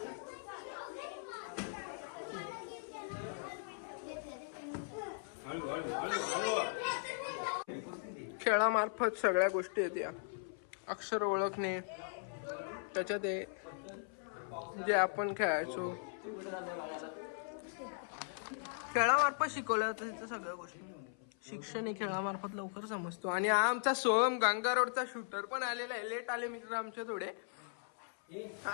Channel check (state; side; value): silent; right; 52 dB below the other